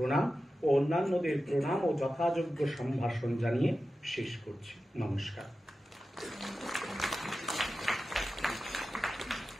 ও অন্যান্যদের প্রণাম ও যথাযোগ্য সম্ভাষণ জানিয়ে শেষ করছি। নমস্কার।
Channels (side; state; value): both; normal; correlation 0.93